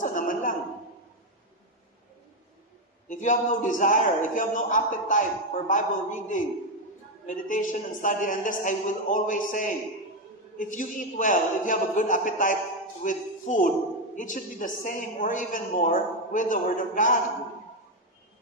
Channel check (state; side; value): normal; both; correlation 0.07